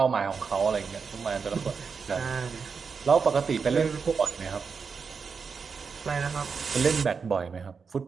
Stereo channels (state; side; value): quieter; left; 5.5 dB